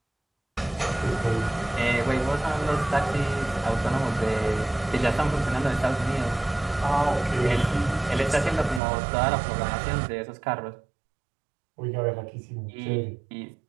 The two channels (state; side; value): drops out; left; at 8.8 s